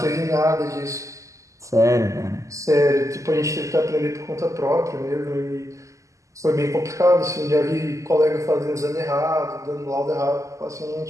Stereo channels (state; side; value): late; left; 0.16 ms